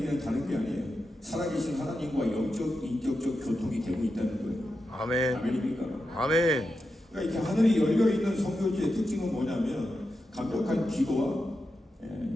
다른 게 아니에요. 살아계신 하나님과 영적, 인격적 교통이 되고 있다는 거예요. 아멘. 아멘입니까? 아멘. 그러니까 이렇게 하늘이 열려있는 선교지의 특징은 뭐냐면 강력한 기도와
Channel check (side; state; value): both; normal; correlation 0.89